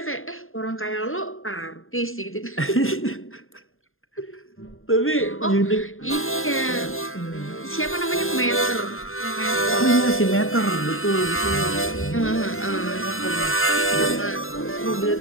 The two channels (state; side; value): late; right; 0.60 ms